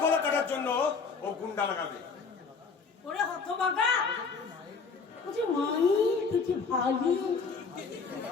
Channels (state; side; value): quieter; right; 5.0 dB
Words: গলা কাটার জন্য ও গুন্ডা লাগাবে। ওরে হতভাগা, তুই মানি তুই ভাবি